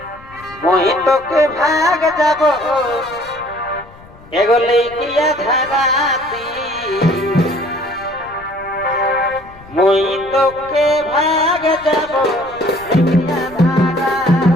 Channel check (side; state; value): left; noise; rumble, 22 dB below the sound